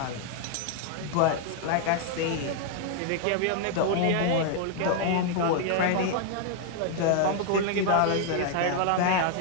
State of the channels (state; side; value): different; both; correlation 0.00